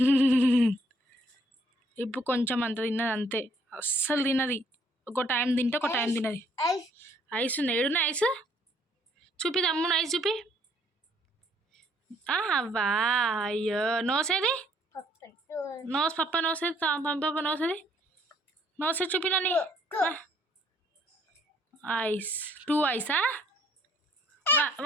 ఇప్పుడు కొంచెం అంత తిన్నది అంతే, అస్సలు తిన్నది. ఒక టైం తింటే ఒక టైం తిన్నది. ఐస్ ఉంది, ఏడున్నా ఐస్? చూపి తమ్ముడు, ఐస్ చూపి. అవ్వా, అయ్యో. నోసేది? నోస్ పప్ప నోసేది, పంప నోసేది. నోసేది చూపినని. ఐస్ 2 ఐసా?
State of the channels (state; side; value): normal; both; correlation 0.64